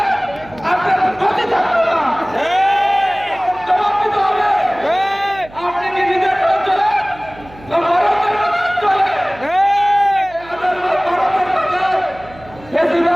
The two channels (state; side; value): noise; right; hum, 21 dB below the sound